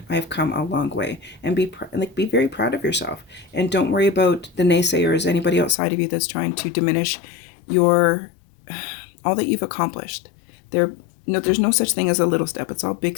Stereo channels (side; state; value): right; drops out; at 5.8 s